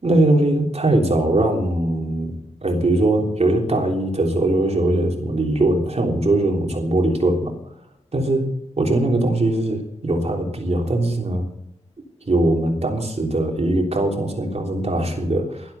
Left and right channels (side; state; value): both; normal; correlation 0.77